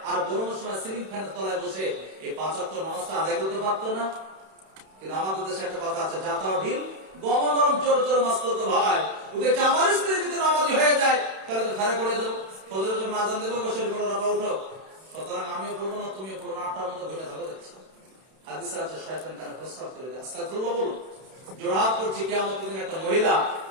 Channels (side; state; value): left; late; 31 ms